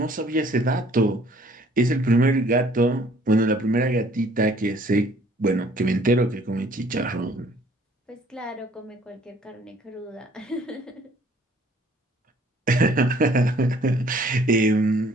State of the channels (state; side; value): normal; both; correlation 0.58